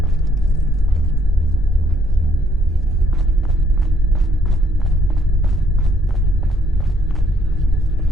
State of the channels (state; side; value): normal; both; correlation 0.69